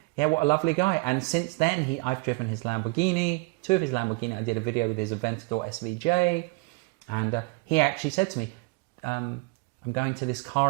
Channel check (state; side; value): quieter; left; 26.3 dB